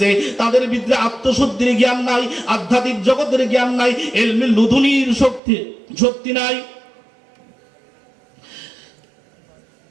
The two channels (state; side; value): drops out; left; at 5.4 s